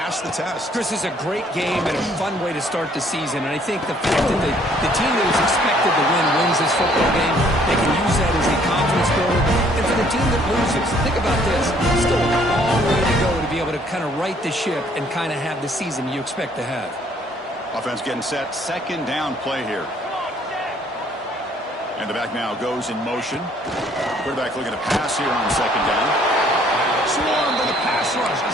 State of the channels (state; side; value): normal; both; correlation 0.62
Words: the test. Chris, is a great game and a fun way to start the season. And I think the fact that the team that was expected to win wins this football game, they can use that as a confidence builder. And for the team that loses, think about this. Still a long way to go to be able to kind of right the ship and kind of have the season you expect to have. Offense getting set. Second down play here. And the back now goes in motion. Quarterback looking to pass here on second down. Swarm to the pass rush. A